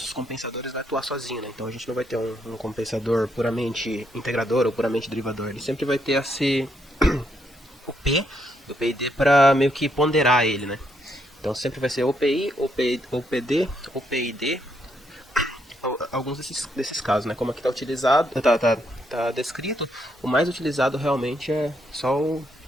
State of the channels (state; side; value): normal; both; correlation 0.76